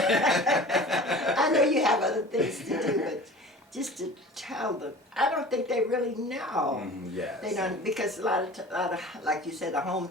I know you have other things to do, but just to tell them, I don't think they really know. Yes. They don't, because a lot of, like you said, the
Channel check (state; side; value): normal; both; correlation 0.40